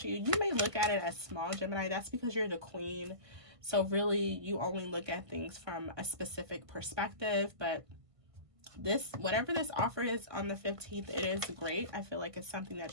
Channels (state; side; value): late; left; 1.5 ms